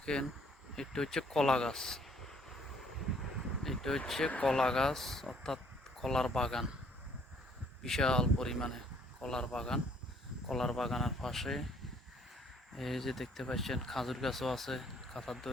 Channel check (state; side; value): normal; both; correlation 0.62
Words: এটা হচ্ছে কলা গাছ, এটা হচ্ছে কলা গাছ অর্থাৎ কলার বাগান, বিশাল পরিমাণে কলার বাগান। কলার বাগানের পাশে এই যে দেখতে পাচ্ছেন খাজুর গাছও আছে কাঁথার